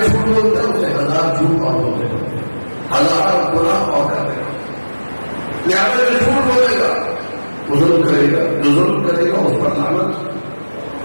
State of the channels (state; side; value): inverted; both; correlation -1.00